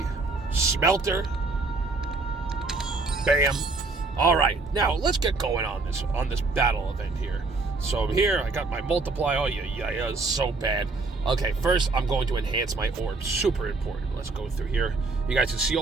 smelter. Bam. All right, now let's get going on this battle event here. So here, I got my multiplier. Oh, yeah, it's so bad. Okay, first, I'm going to enhance my orbs. Super important. Let's go through here. You guys can see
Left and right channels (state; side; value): quieter; left; 3.7 dB